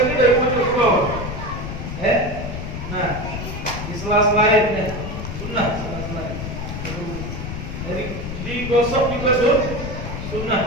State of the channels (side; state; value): left; noise; rumble, 6 dB below the sound